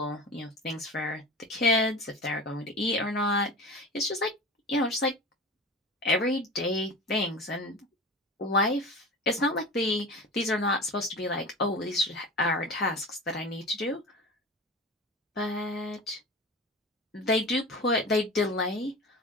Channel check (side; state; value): both; normal; correlation 0.33